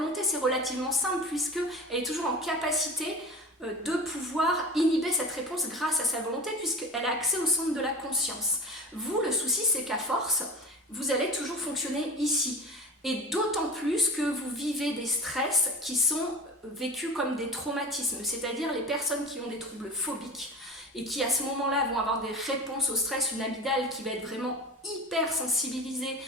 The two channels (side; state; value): both; normal; correlation 0.33